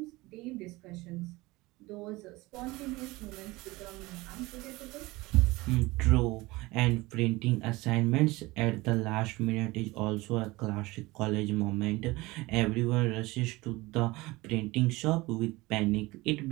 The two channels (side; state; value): left; quieter; 21.3 dB